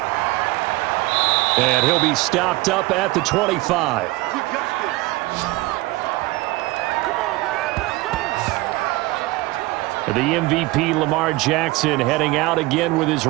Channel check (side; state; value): left; quieter; 20.6 dB